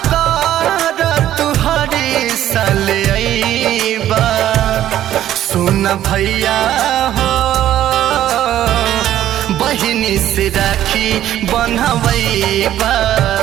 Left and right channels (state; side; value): quieter; left; 12.2 dB